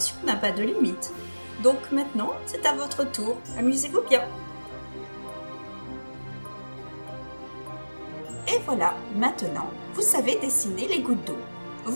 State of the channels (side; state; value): both; inverted; correlation -1.00